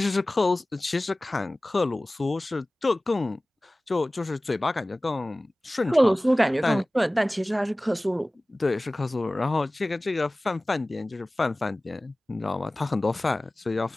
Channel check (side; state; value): both; normal; correlation 0.98